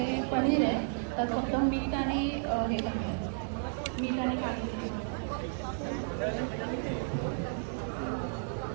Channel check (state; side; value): silent; left; 56 dB below the other